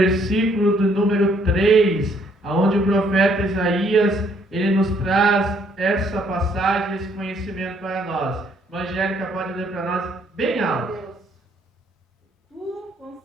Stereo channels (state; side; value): normal; both; correlation 0.67